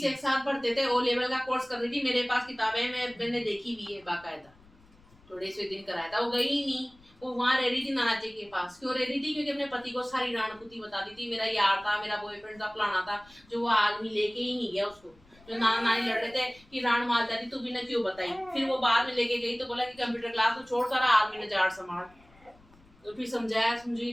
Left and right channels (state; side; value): noise; left; rumble, 28 dB below the sound